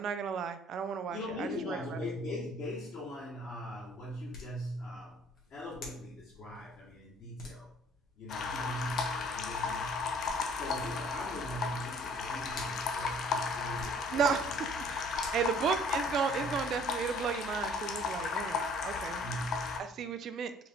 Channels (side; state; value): both; normal; correlation 0.55